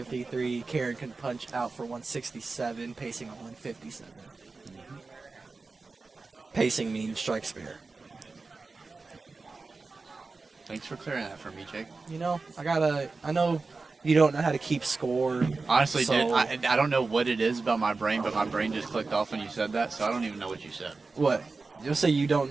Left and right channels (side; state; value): left; quieter; 4.0 dB